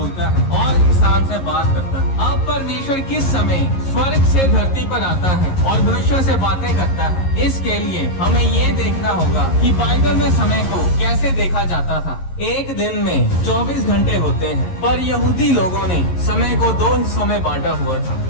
है और इंसान से बात करता है? अब परमेश्वर किस समय स्वर्ग से धरती पर आता है और मनुष्यों से बातें करता है? इसके लिए हमें ये देखना होगा कि बाइबल में समय को कैसे देखा जाता था। एक दिन में 24 घंटे होते हैं, पर यहूदी लोगों ने समय को दो हिस्सों में बांटा हुआ था।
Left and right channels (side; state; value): right; late; 11 ms